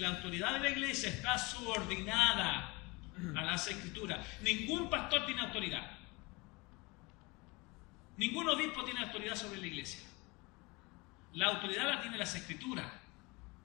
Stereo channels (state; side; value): quieter; right; 25.6 dB